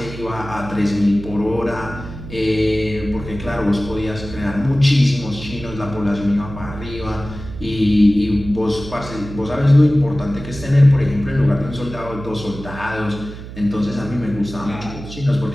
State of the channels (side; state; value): right; noise; hum, 12 dB below the sound